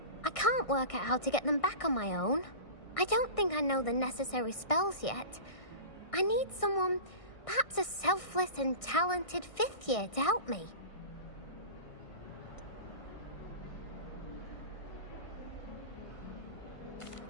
I can't work out how to get them back on my own. I don't think I know the necessary spells yet. I need someone, perhaps a selfless and talented fifth year to help me.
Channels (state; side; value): late; right; 1.6 ms